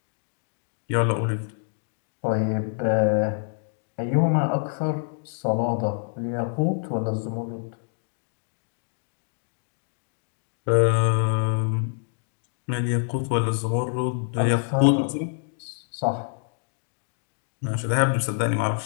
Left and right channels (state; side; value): silent; right; digital silence